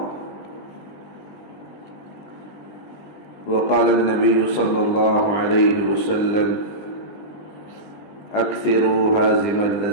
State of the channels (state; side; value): late; right; 20 ms